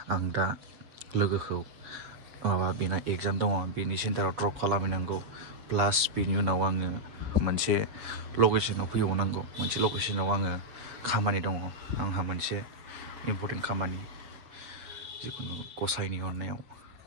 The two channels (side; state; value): left; late; 7.2 ms